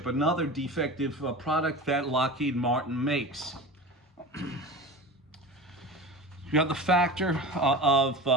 another defective product that Lockheed Martin makes. You have the factor of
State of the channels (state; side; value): normal; both; correlation 0.32